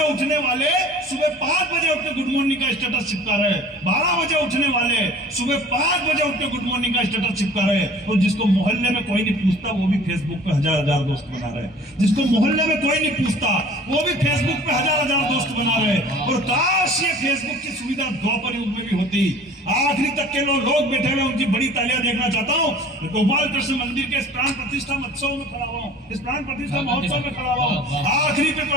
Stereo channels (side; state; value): both; normal; correlation 0.46